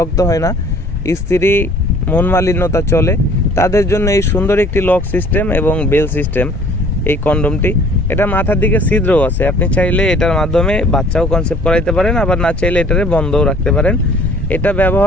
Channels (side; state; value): both; normal; correlation 0.54